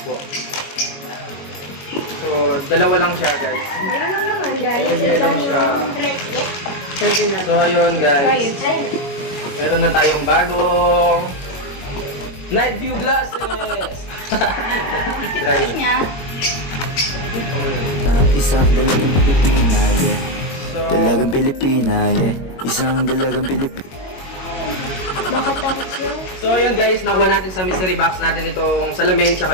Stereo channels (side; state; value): right; late; 22 ms